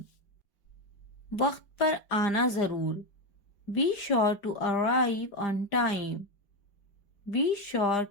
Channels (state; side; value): late; right; 4.9 ms